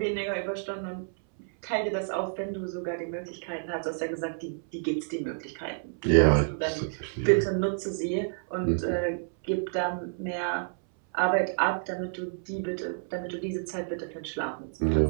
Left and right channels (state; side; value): silent; left; 58 dB below the other